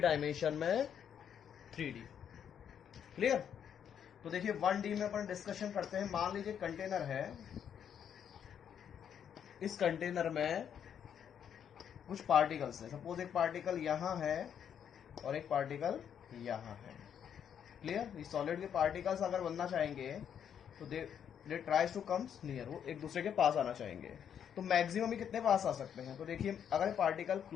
डायमेंशन में 3D। क्लियर? तो देखिए 1D में अपन डिस्कशन करते हैं। मान लीजिए कंटेनर है, इस कंटेनर में कुछ पार्टिकल्स है। सपोज एक पार्टिकल यहां है और एक पार्टिकल यहां है। क्लियर? इस सॉलिड के पार्टिकल्स अगर बनना चाहेंगे तो दे ट्राइज टू कम्स नियर, वो एक दूसरे के पास आना चाहेंगे। तो मैक्सिमम ही कितने पास आ सकते हैं? तो देखिए अगर पार्टिकल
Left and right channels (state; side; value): quieter; right; 8.6 dB